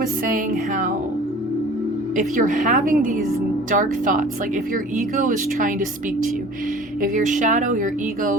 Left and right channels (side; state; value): both; normal; correlation 0.45